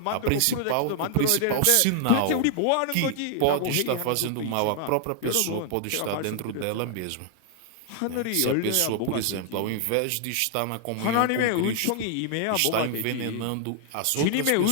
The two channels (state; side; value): different; both; correlation 0.00